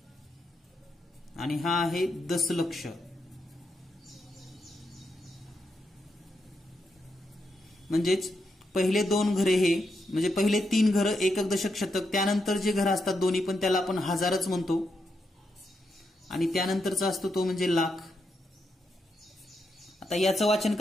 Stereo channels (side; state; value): both; normal; correlation 0.83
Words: आणि हा आहे दशलक्ष. म्हणजेच पहिले 2 घरे हे म्हणजे पहिले 3 घरं एकक दशक शतक, त्यानंतर जे घरं असतात दोन्ही पण त्याला आपण हजारच म्हणतो आणि त्यानंतरचा असतो तो म्हणजे लाख. आता याचं वाचन